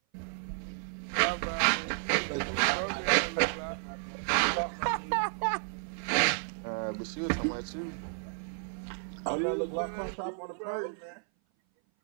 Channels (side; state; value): left; silent; 56 dB below the other